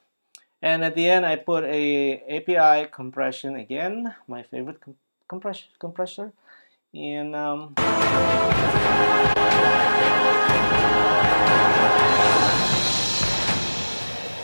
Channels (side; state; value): both; inverted; correlation -1.00